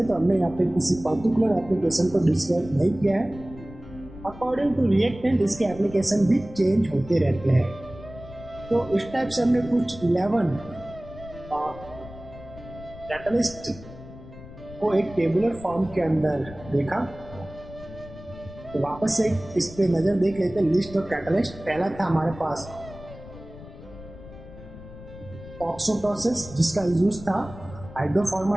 तो हमने यहाँ पे किसी पर्टिकुलर एप्लीकेशन को डिस्क्राइब नहीं किया है। अकॉर्डिंग टू रिएक्टेंट इसके एप्लीकेशन भी चेंज होते रहते हैं। तो इस टाइप से हमने कुछ 11 कैटालिस्ट को एक टेबुलर फॉर्म के अंदर देखा। तो वापस से इस पे नजर देख लेते हैं लिस्ट ऑफ कैटालिस्ट। पहला था हमारे पास ऑक्सो प्रोसेस, जिसका यूज था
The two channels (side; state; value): left; noise; rumble, 16 dB below the sound